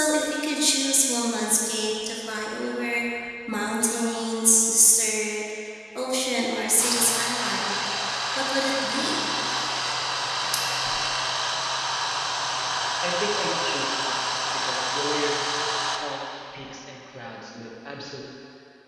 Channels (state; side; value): identical; both; correlation 1.00